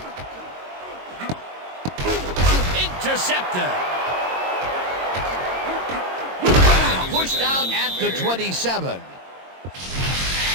Intercepted. Pushed out at the 27.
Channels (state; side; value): late; left; 22 ms